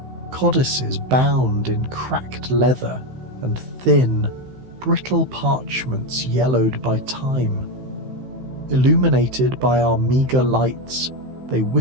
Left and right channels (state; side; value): late; left; 15 ms